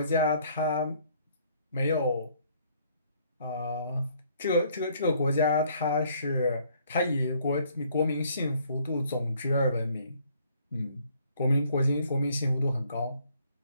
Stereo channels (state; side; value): inverted; both; correlation -0.63